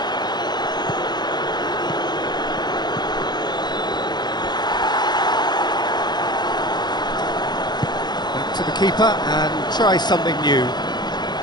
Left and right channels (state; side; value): late; right; 0.21 ms